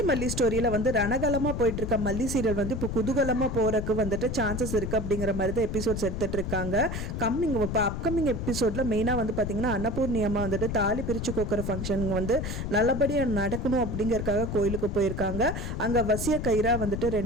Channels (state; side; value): noise; left; rumble, 4 dB below the sound